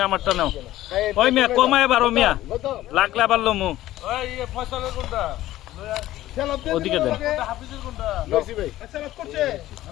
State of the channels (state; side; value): quieter; right; 15.0 dB